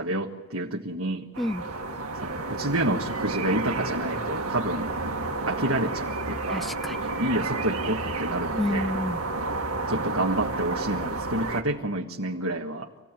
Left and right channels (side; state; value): both; normal; correlation 0.08